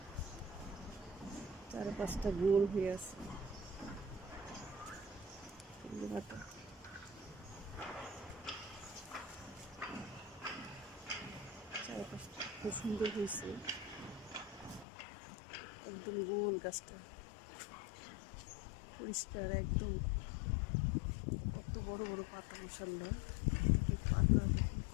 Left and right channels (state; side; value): drops out; right; at 14.9 s